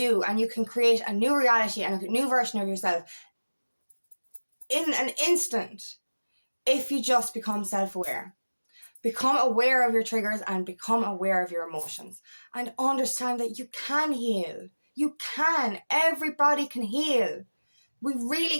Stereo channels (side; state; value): both; inverted; correlation -1.00